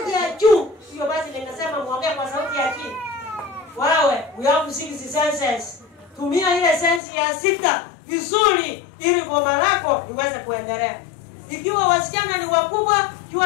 ya juu. Hiyo basi nimesema muongee kwa sauti ya chini. Wewe, we have 6 senses. Tumia ile sense ya 6 vizuri ili boma lako liweze kuendelea. Ikiwa wasichana ni wakubwa,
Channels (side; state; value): right; drops out; at 7.0 s